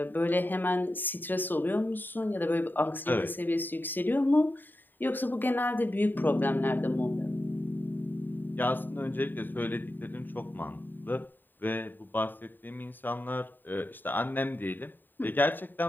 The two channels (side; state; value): right; late; 0.091 ms